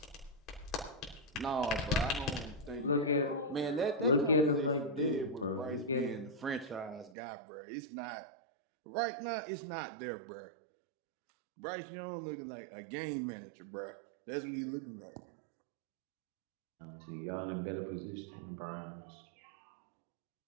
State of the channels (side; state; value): left; drops out; at 7.2 s